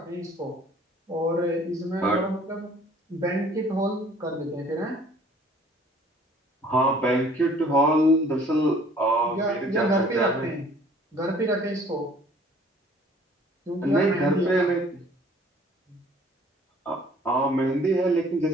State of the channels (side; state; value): both; normal; correlation 0.54